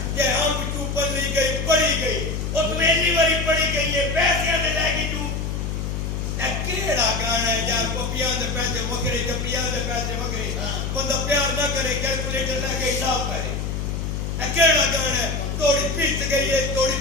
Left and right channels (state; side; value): noise; left; hum, 2 dB below the sound